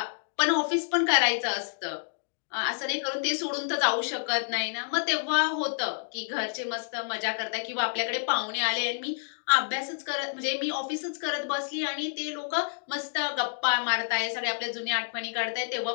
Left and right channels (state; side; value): silent; right; digital silence